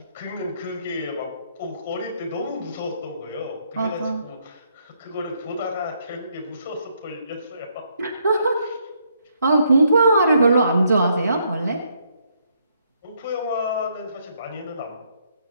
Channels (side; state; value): both; inverted; correlation -0.72